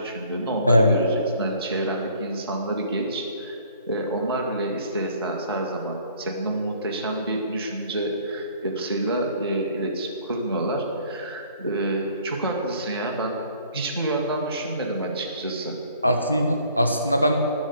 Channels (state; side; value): inverted; both; correlation -0.57